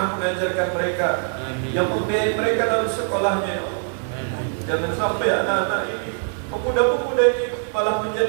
mengajarkan mereka, yang membiayai mereka dalam sekolahnya, ya Allah. Jangan sampai anak-anak ini, pemuda-pemuda ini malah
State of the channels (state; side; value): silent; left; 59 dB below the other